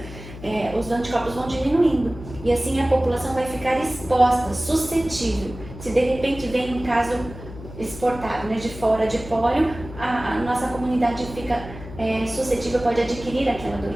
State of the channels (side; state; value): left; noise; hum, 14 dB below the sound